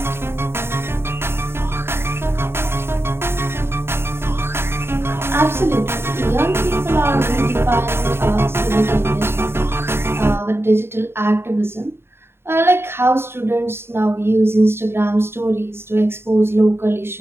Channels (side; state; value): left; late; 0.11 ms